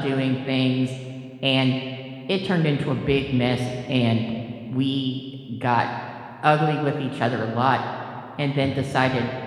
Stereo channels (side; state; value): both; identical; correlation 1.00